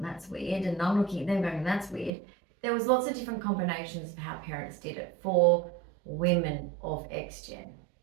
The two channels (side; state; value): left; drops out; at 2.1 s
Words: that's weird, and I'm looking at them going, that's weird. There was lots of different combinations of how parents did it for women of X-Gen.